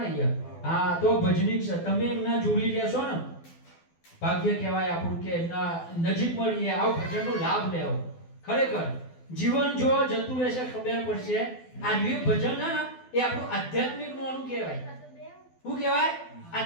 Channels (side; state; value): right; late; 12 ms